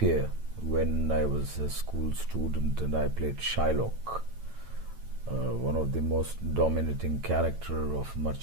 when I was a school student, and I played Shylock, one of the most dominating character of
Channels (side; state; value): left; late; 9.0 ms